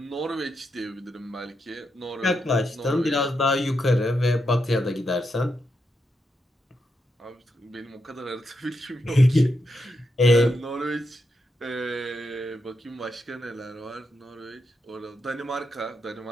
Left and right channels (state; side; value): normal; both; correlation 0.83